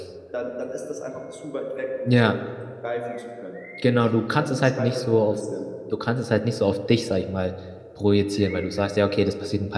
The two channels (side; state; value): both; identical; correlation 1.00